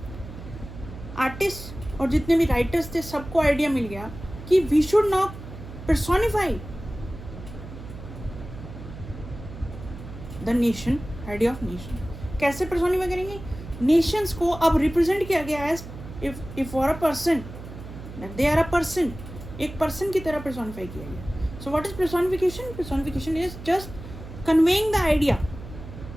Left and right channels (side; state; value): right; noise; hum, 13 dB below the sound